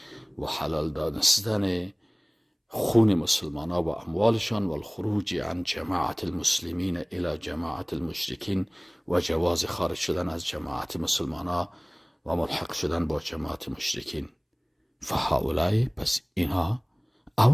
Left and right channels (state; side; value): identical; both; correlation 1.00